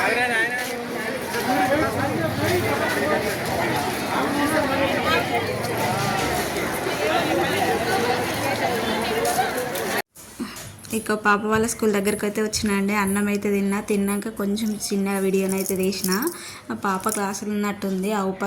ఇక పాప వాళ్ళ స్కూల్ దగ్గరికి అయితే వచ్చినండి. అన్నం అయితే తిన్నాక కొంచెం చిన్న వీడియోనైతే తీసిన. ఆ పాప క్లాసులు ఉన్నట్టుంది.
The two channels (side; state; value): both; identical; correlation 1.00